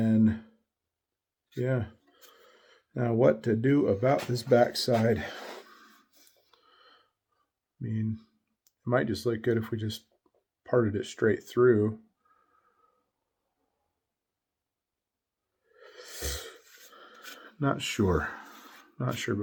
yeah. Now what to do about this backside? I mean, it might just look good if we just parted it straight through. Not sure, but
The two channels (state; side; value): identical; both; correlation 1.00